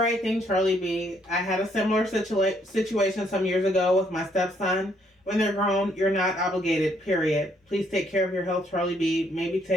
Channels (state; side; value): normal; both; correlation 0.69